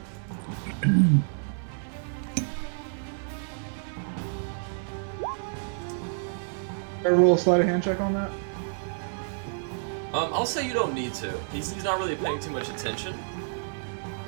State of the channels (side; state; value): left; silent; 59 dB below the other